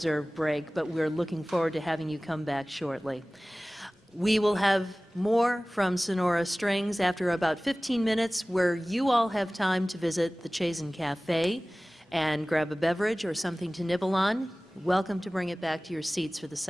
break, but we're looking forward to having you come back shortly. We will have more from Sonora Strings after about 15 minutes, where you all have time to visit the Chazen Cafe and grab a beverage or something to nibble on. Welcome to bring it back to your seats for the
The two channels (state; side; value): normal; both; correlation 0.98